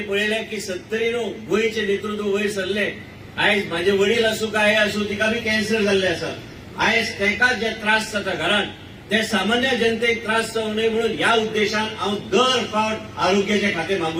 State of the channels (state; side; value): identical; both; correlation 1.00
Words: पळयलें की 70 गोंयचे नेतृत्व वयर सरले. आयज म्हाजे वडील आसूं काय आसूं तिका बी कॅन्सर जाल्ले आसा. आयज तेका जे त्रास जाता घरान ते सामान्य जनतेक त्रास जावं नये म्हणून ह्या उद्देशान हांव दर फावट आरोग्याचें खातें